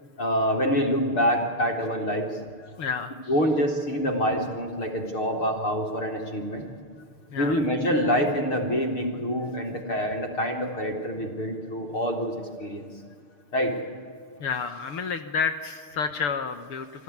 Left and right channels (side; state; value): right; late; 6.8 ms